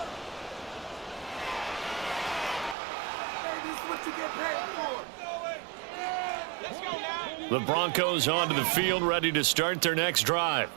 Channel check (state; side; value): drops out; left; at 2.8 s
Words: The Broncos onto the field, ready to start their next drive.